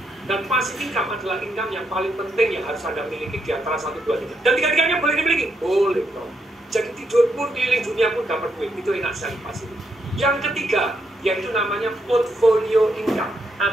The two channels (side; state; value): both; normal; correlation 0.79